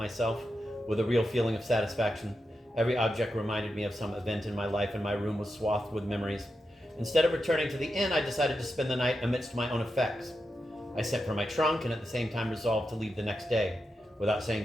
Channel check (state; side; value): normal; both; correlation 0.88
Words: with a real feeling of satisfaction. Every object reminded me of some event in my life, and my room was swathed with memories. Instead of returning to the inn, I decided to spend the night amidst my own effects. I sent for my trunk and at the same time resolved to leave the next day, without saying